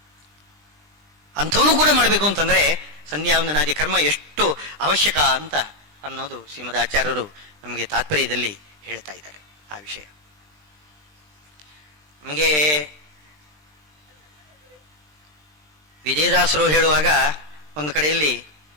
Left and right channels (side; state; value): left; late; 20 ms